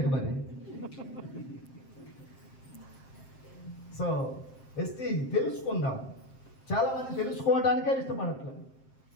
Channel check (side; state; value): right; late; 7.5 ms